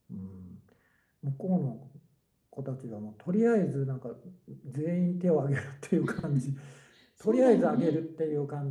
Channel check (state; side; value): identical; both; correlation 1.00